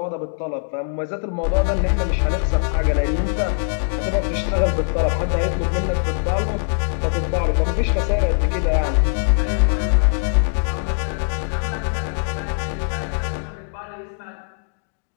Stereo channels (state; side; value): silent; right; digital silence